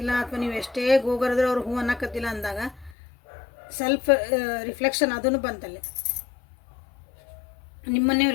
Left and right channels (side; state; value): right; drops out; at 3.0 s